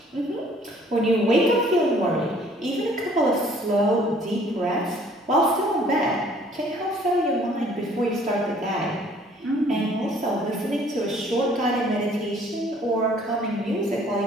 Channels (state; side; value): normal; both; correlation 0.57